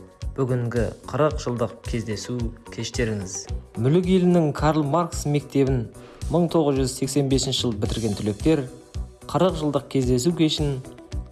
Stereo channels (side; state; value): both; identical; correlation 1.00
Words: бүгінгі 40 жылдық кездесу кештеріңіз. Мүлік елінің Карл Маркс мектебін 1985 жыл бітірген түлектер 40 жылдық кездесу кешін